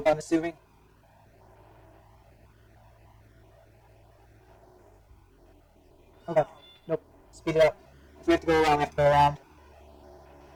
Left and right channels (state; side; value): identical; both; correlation 1.00